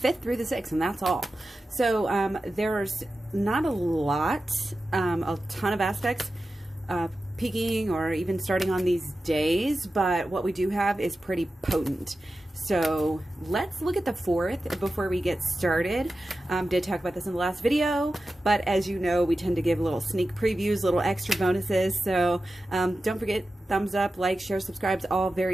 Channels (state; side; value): normal; both; correlation 0.93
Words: through the 6th, and that's all. So there's not a lot, a ton of aspects peaking or even starting on these days, but what we do have is pretty potent. So let's look at the 4th before we get started. Did talk about this in the last video, but as you know, we tend to give little sneak previews, little extra bonuses. So don't forget, thumbs up, like, share, subscribe, all